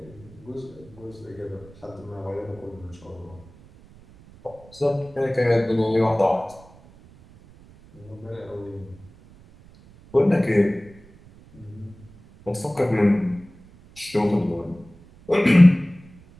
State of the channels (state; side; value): noise; right; rumble, 24 dB below the sound